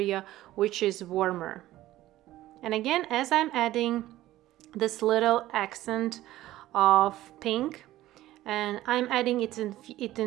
which is warmer. And again, as I'm adding this little accent of pink, and I'm adding it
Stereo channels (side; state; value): left; quieter; 15.3 dB